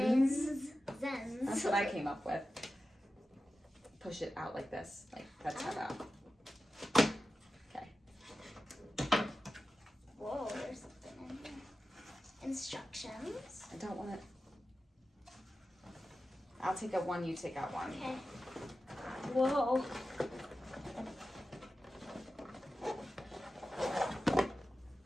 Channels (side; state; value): both; normal; correlation 0.93